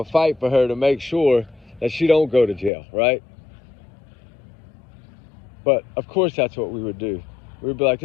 fight for her to make sure that she don't go to jail, right? But of course that's what we would do. We'd be like,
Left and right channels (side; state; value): right; drops out; at 2.7 s